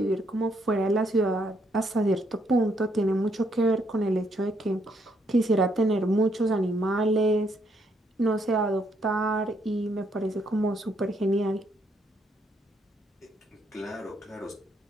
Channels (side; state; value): both; normal; correlation 0.73